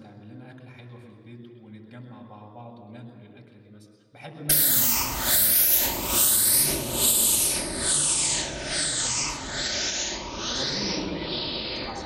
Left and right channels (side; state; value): both; identical; correlation 1.00